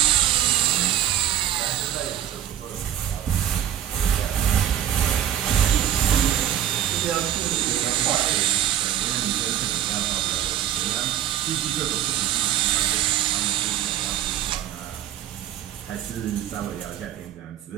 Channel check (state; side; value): quieter; left; 11.0 dB